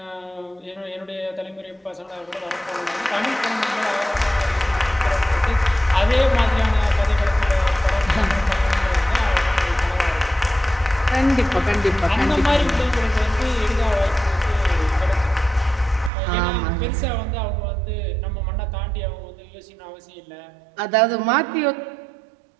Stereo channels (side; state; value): left; drops out; at 16.1 s